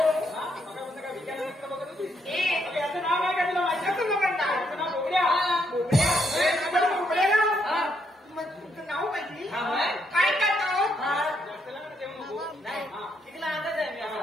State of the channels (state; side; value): normal; both; correlation 0.76